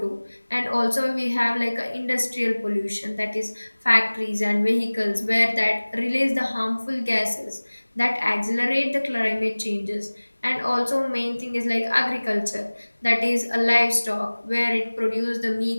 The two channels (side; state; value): both; inverted; correlation -1.00